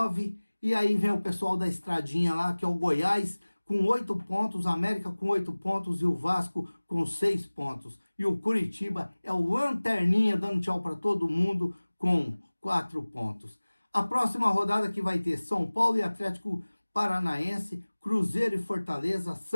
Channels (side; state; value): both; inverted; correlation -1.00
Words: e aí vem o pessoal da estradinha lá, que é o Goiás, com 8 pontos, América com 8 pontos e o Vasco com 6 pontos. E o Curitiba é o lanterninha, dando tchau para todo mundo, com 4 pontos. A próxima rodada que vai ter São Paulo e Atlético Paranaense, Cruzeiro e Fortaleza,